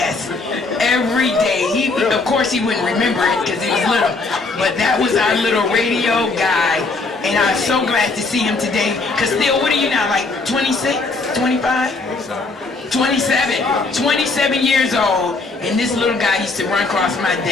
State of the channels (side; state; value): right; quieter; 3.7 dB